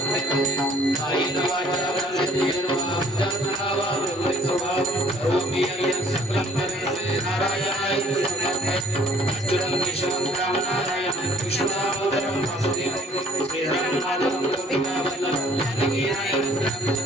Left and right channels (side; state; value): both; normal; correlation 0.59